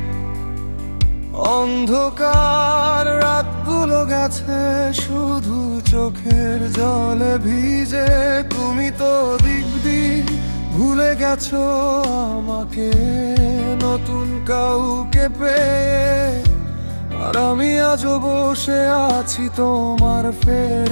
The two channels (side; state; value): both; inverted; correlation -1.00